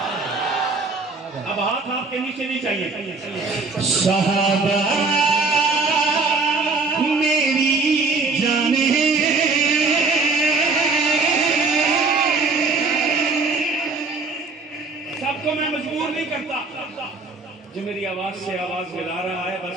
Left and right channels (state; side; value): quieter; left; 3.9 dB